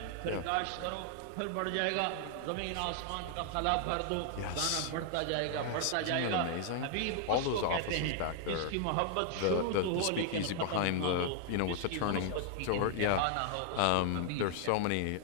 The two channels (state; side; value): different; both; correlation 0.00